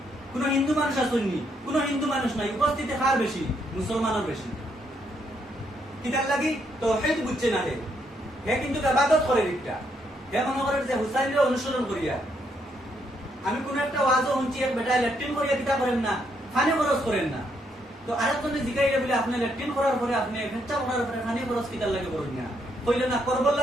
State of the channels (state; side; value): normal; both; correlation 0.75